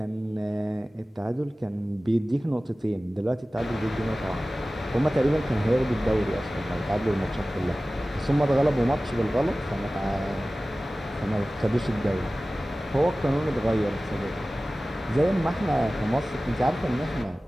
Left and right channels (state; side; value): normal; both; correlation 0.97